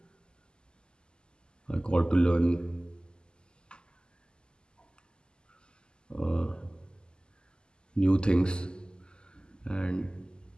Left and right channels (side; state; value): right; late; 0.047 ms